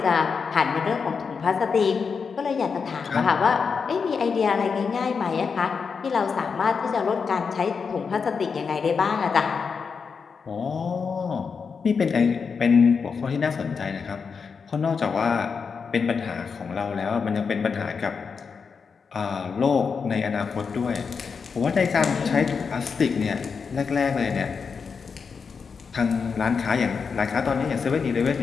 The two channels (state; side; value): quieter; right; 5.6 dB